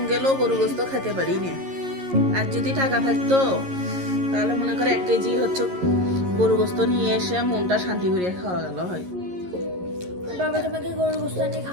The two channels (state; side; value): late; left; 11 ms